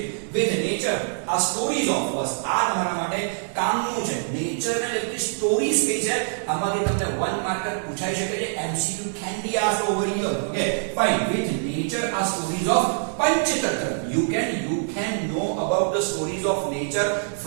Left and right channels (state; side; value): silent; left; digital silence